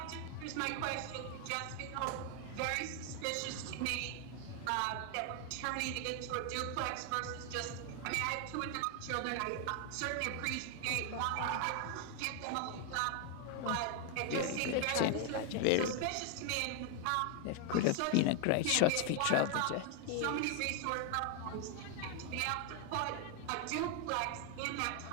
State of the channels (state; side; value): different; both; correlation 0.01